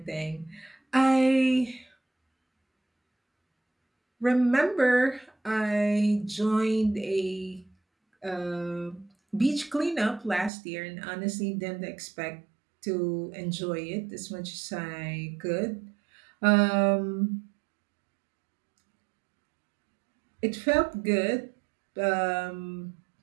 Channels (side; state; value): left; drops out; at 10.5 s